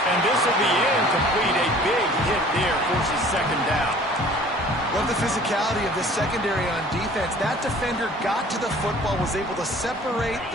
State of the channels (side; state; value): both; normal; correlation 0.50